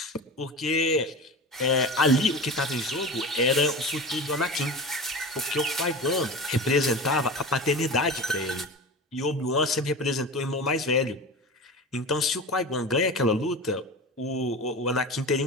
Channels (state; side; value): normal; both; correlation 0.30